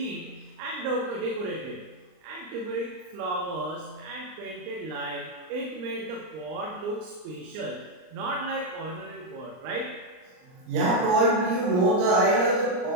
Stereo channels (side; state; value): left; late; 39 ms